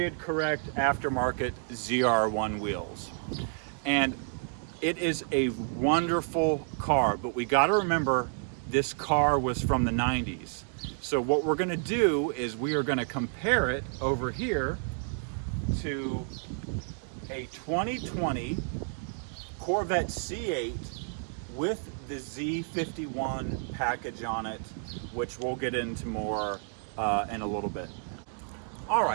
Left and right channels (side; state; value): left; silent; 57 dB below the other